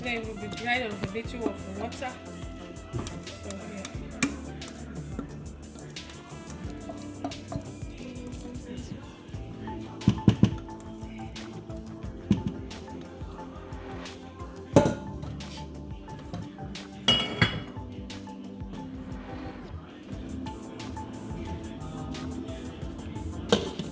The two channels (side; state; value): both; identical; correlation 1.00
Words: it will be dried on a little of water. So yeah.